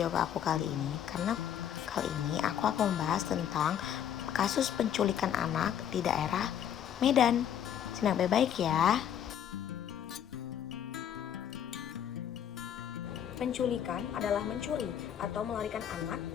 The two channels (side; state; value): right; quieter; 9.6 dB